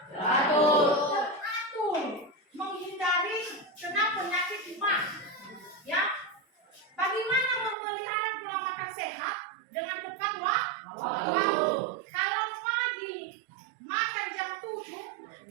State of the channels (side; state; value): left; drops out; at 7.8 s